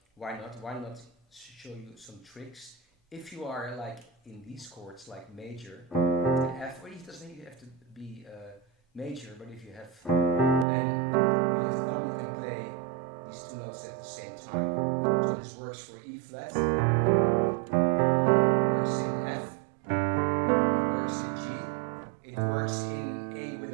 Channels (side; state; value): left; drops out; at 10.7 s